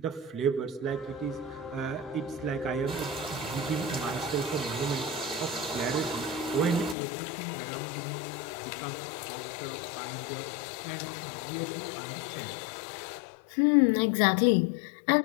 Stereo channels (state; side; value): drops out; right; at 7.0 s